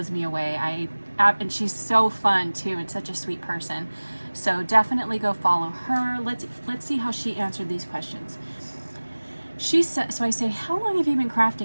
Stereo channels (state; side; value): inverted; both; correlation -1.00